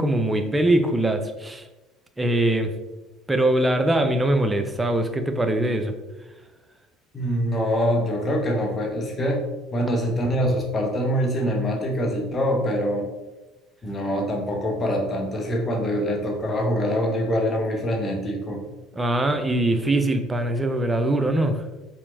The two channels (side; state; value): both; normal; correlation 0.68